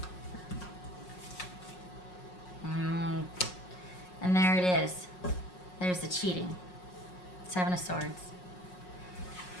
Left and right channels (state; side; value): late; right; 5.5 ms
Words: And there it is. There's the cheating. Seven of Swords.